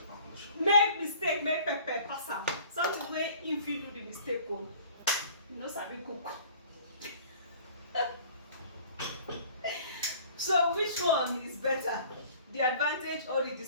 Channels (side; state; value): both; inverted; correlation -0.50